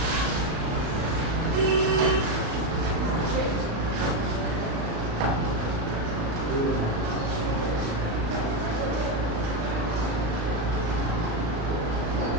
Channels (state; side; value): late; left; 36 ms